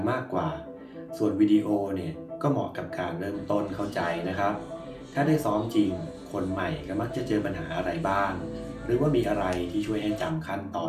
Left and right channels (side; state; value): both; identical; correlation 1.00